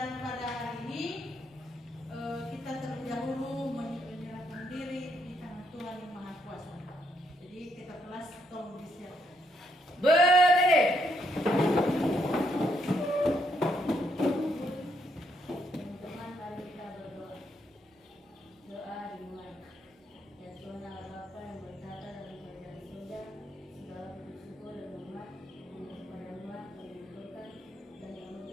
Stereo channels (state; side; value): normal; both; correlation 0.75